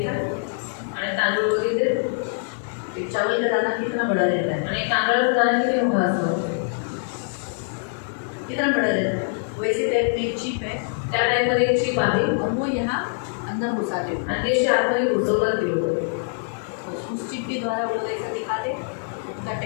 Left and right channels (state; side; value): silent; right; digital silence